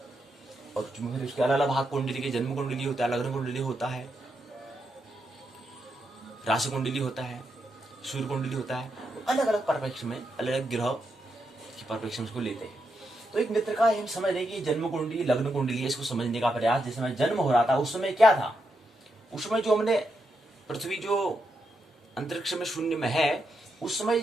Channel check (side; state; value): both; normal; correlation 0.83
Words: और फिर उसके अलग अलग भाग कुंडली के, जन्म कुंडली होता है, लग्न कुंडली होता है, राशि कुंडली होता है, सूर्य कुंडली होता है। अलग अलग परिप्रेक्ष्य में अलग अलग ग्रह के परिप्रेक्ष्य में इसको लेते हैं। तो एक मित्र का हम समझ रहे कि जन्म कुंडली लग्न कुंडली है, इसको समझने का प्रयास। जिस समय जन्म हो रहा था उस समय क्या था, उस समय जो हमने पृथ्वी जो अंतरिक्ष में शून्य में है, उस समय